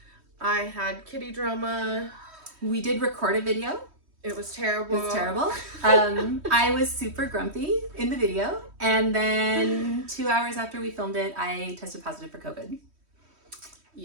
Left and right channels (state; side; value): late; left; 3.1 ms